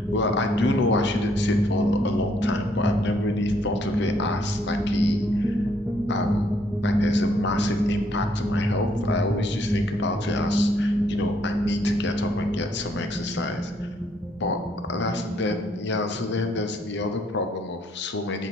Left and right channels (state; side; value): normal; both; correlation 0.69